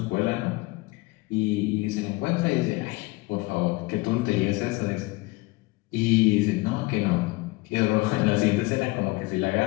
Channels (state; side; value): quieter; right; 22.7 dB